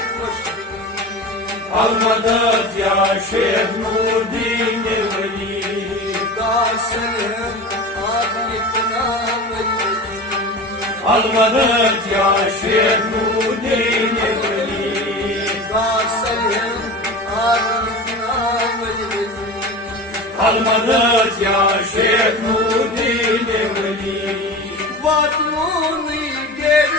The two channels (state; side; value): normal; both; correlation 0.31